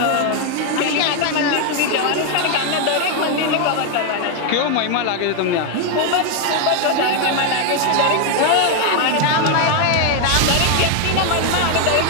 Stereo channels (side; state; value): both; different; correlation 0.01